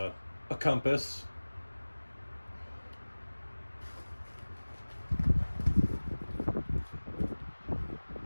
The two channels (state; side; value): inverted; both; correlation -1.00